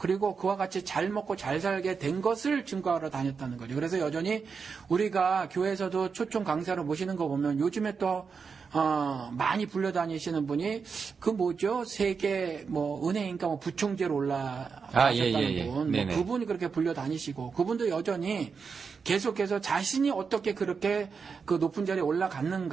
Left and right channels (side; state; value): left; quieter; 5.5 dB